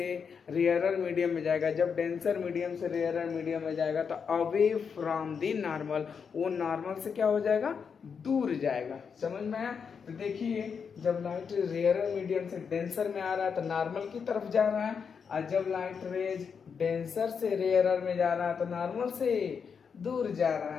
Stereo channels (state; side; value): quieter; right; 6.3 dB